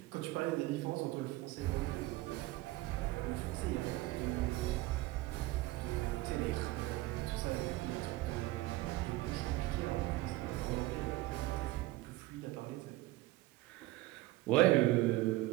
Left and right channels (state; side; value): quieter; left; 18.2 dB